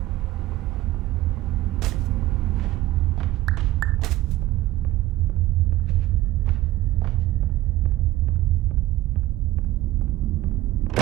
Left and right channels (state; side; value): quieter; left; 16.1 dB